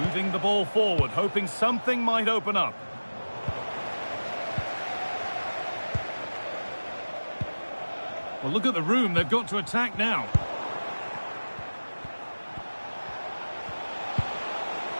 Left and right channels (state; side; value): inverted; both; correlation -1.00